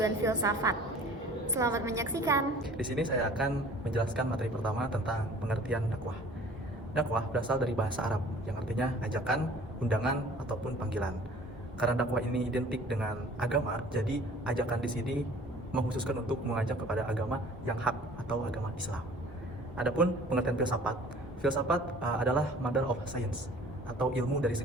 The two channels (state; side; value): normal; both; correlation 0.50